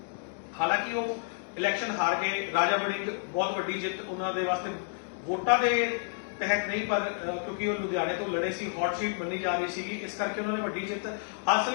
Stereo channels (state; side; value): silent; right; digital silence